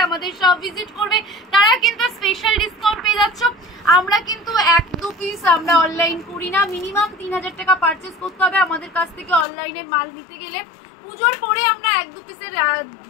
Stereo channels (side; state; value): right; drops out; at 9.5 s